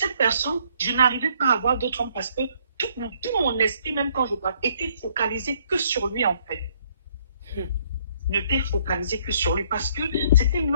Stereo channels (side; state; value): both; inverted; correlation -0.65